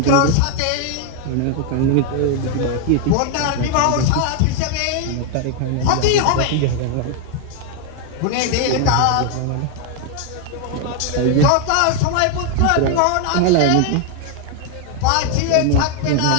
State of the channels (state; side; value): different; both; correlation 0.01